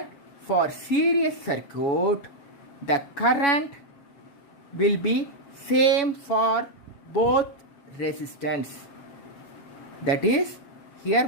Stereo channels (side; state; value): right; late; 7.2 ms